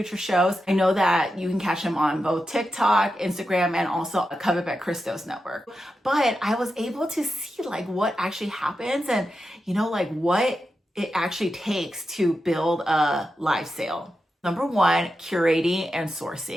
shows, I know that you can catch them on both TikTok, Instagram, and also a Covet by Christos network. But I was able to see what actually happens and, what it actually takes to build a live sale. Number one, curating and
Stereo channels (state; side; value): normal; both; correlation 0.89